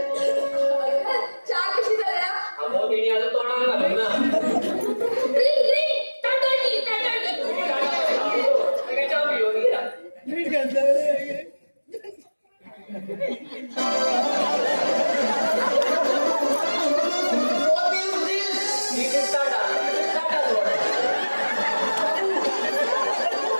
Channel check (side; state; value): both; inverted; correlation -1.00